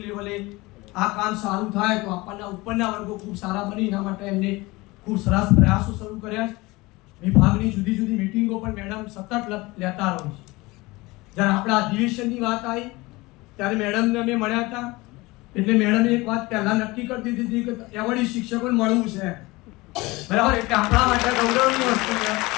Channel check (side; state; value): right; quieter; 22.2 dB